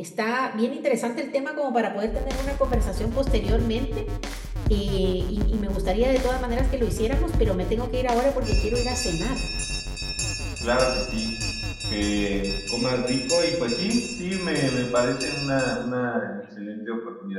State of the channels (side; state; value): both; identical; correlation 1.00